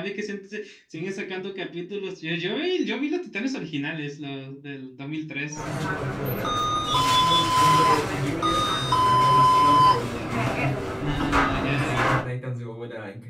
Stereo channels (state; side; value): identical; both; correlation 1.00